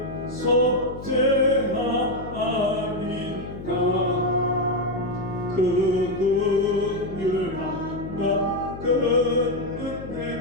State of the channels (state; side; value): noise; left; hum, 11 dB below the sound